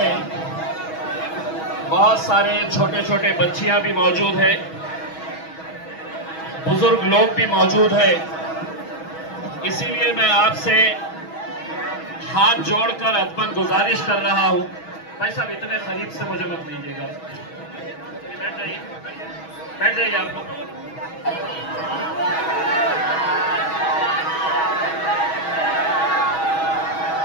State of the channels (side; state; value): right; late; 6.2 ms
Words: बहुत सारे छोटे छोटे बच्चियां भी मौजूद है, बुजुर्ग लोग भी मौजूद है। इसीलिए मैं आपसे हाथ जोड़कर अदबन गुजारिश कर रहा हूं, भाई साहब इतने करीब से मुझे मत लीजिएगा, बैठ जाइए, बैठ जाइए आप लोग।